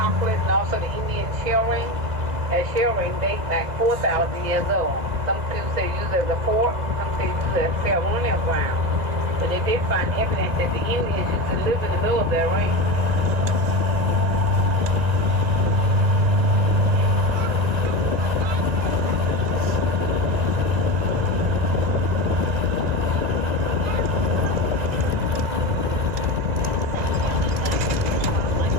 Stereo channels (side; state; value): left; late; 2.0 ms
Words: and also the Indian shell ring. That shell ring dates like 4,000 years old. Some people say use it as a fort, some say use it as ceremonial ground. But they did find evidence that the Indians used to live in the middle of their ring.